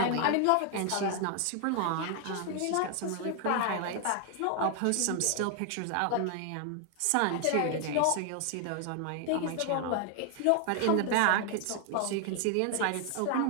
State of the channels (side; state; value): both; different; correlation 0.00